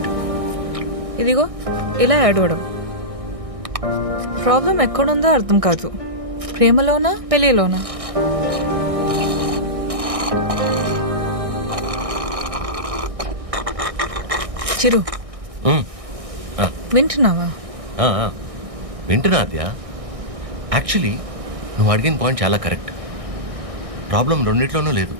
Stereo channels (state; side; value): late; left; 1.6 ms